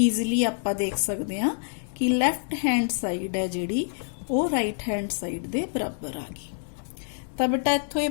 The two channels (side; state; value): right; silent; digital silence